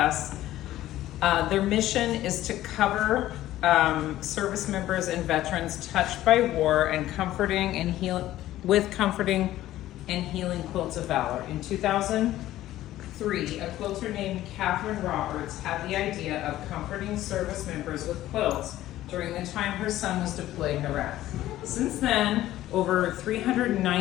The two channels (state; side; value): quieter; right; 14.4 dB